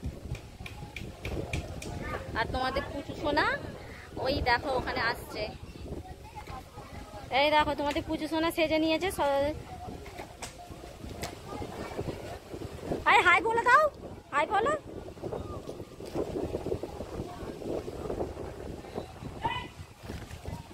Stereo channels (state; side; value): identical; both; correlation 1.00